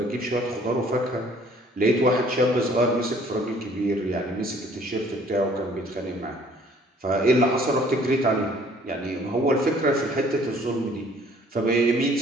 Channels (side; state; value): both; normal; correlation 0.57